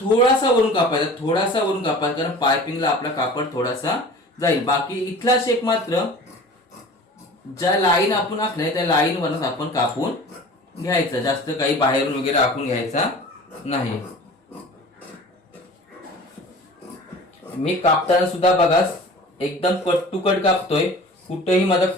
वरून कापायचा, थोडासा वरून कापायचा, कारण पायपिंगला आपला कापड थोडासा जाईल. बाकी इथला शेप मात्र ज्या लाईन आपण आखलाय त्या लाईन वरच आपण कापून घ्यायचा. जास्त काही बाहेरून वगैरे आखून घ्यायचा नाही. मी कापताना सुद्धा बघा एकदम कट टू कट कापतोय. कुठेही माझा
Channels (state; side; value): normal; both; correlation 0.41